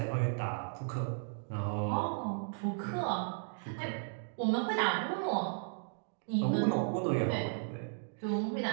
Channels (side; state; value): left; silent; digital silence